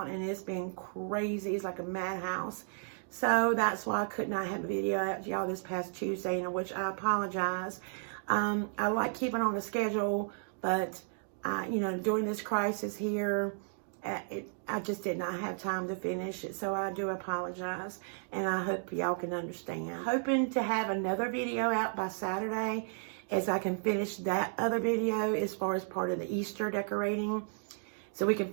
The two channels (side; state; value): left; silent; 55 dB below the other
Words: and it's been crazy. It's like a madhouse. So that's why I could not have a video out to y'all this past Tuesday, in which I apologize. I like keeping on the schedule, but you know, during this crisis here, I just did not have time to finish it, so I do apologize, and I hope y'all can understand. Hoping to have another video out by Saturday, as I can finish that other video as far as part of the Easter decorating, so we can